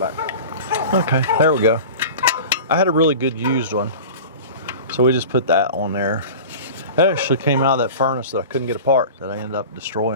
Okay, there we go. I had a really good used one, so we just put that on there. It actually came out of that furnace that I couldn't get apart that I ended up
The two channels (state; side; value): inverted; both; correlation -0.36